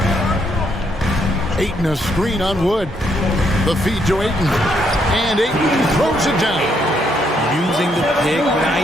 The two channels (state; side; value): normal; both; correlation 0.74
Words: Ayton a screen on Wood. The feed to Ayton. And Ayton throws it down. Using the pick